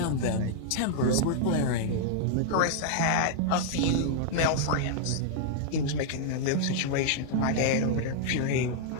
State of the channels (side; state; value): both; different; correlation -0.01